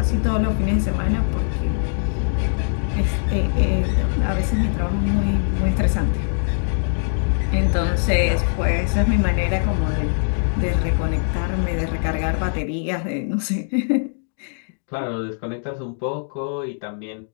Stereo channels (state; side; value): silent; right; digital silence